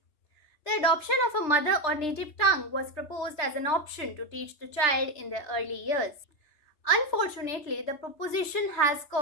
The adoption of a mother or native tongue was proposed as an option to teach the child in their early years. Unfortunately, the proposition has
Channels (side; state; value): right; late; 3.3 ms